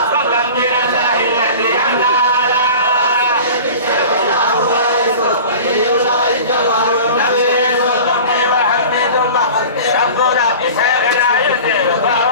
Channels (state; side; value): inverted; both; correlation -0.38